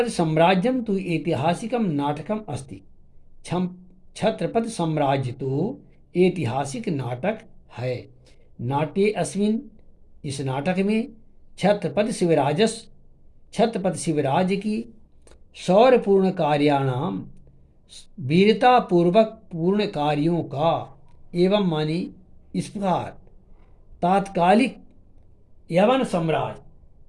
साम्राज्यम तो ऐतिहासिकम नाटकम अस्ति। छत्रपति साम्राज्य तो ऐतिहासिक नाटक है। नाट्ये अस्मिन् इस नाटक में छत्रपति शिवराज की शौर्यपूर्ण कार्याणाम वीरतापूर्वक पूर्ण कार्यों का एवं मानी इस प्रकार तात्कालिक यवन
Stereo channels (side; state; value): both; identical; correlation 1.00